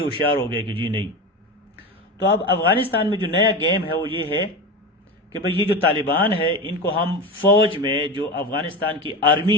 ہوشیار ہو گئے کہ جی نہیں. تو اب افغانستان میں جو نیا گیم ہے وہ یہ ہے کہ بھئی یہ جو طالبان ہے ان کو ہم فوج میں، جو افغانستان کی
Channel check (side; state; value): both; normal; correlation 0.24